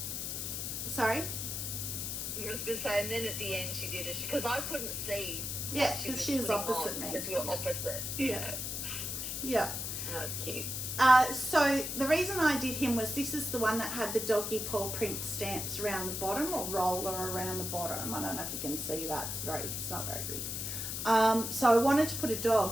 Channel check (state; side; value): noise; left; hiss, 3 dB below the sound